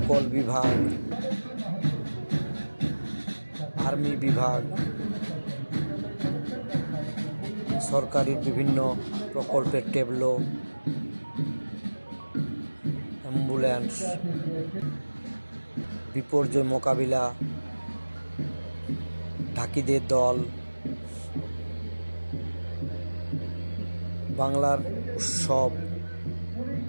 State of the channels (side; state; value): both; inverted; correlation -1.00